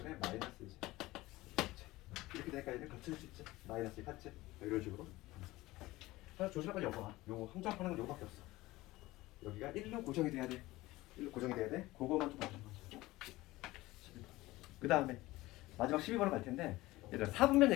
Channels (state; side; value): quieter; right; 18.7 dB